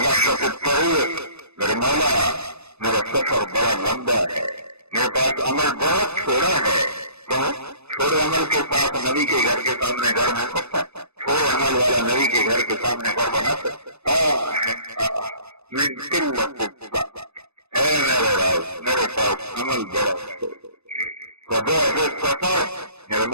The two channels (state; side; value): late; left; 0.80 ms